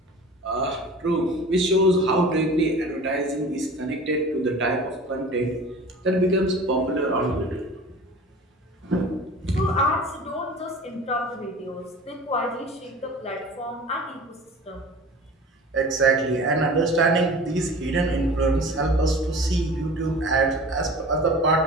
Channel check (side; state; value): both; normal; correlation 0.40